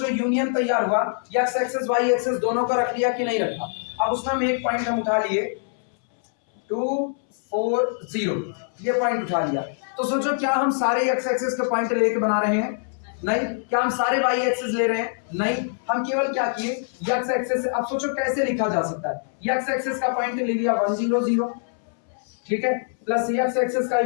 यूनियन तैयार हुआ, x एक्सिस y एक्सिस दोनों को रख लिया कि नहीं रखा? अब उसमें हम एक पॉइंट हम उठा लिए 2 4 0, ये पॉइंट उठा लिया। तो सोचो क्या हम सारे x एक्सिस के पॉइंट लेके बना रहे हैं? नहीं। क्या हम सारे y एक्सिस ले रहे हैं? नहीं। हम केवल क्या किए, x एक्सिस। अब सोचो कैसे लिखा जा सकता है, x एक्सिस का पॉइंट ले लिया 1 0 0, ठीक है, प्लस x एक्सिस का ही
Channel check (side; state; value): right; silent; 63 dB below the other